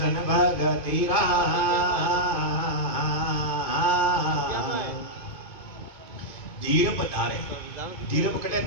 भगतीरा। धीरप धारे, धीरप कटे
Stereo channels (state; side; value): late; right; 2.2 ms